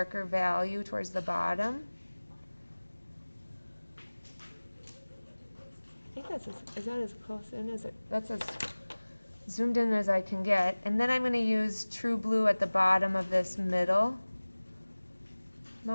value towards the bottom. I think is that as close in as it, that's as zoomed in as I can get. And then I'm going to use true blue at the bottom of this middle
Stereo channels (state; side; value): inverted; both; correlation -1.00